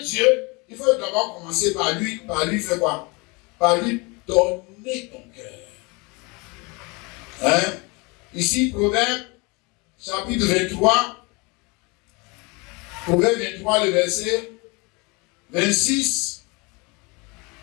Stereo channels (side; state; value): right; quieter; 27.8 dB